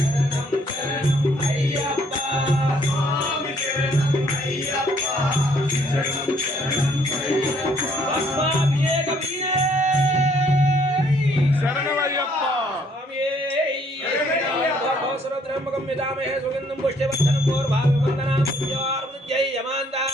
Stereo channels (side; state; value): both; normal; correlation 0.65